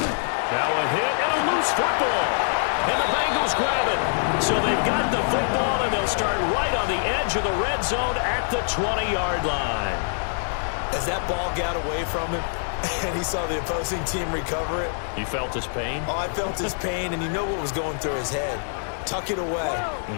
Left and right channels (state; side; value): silent; right; digital silence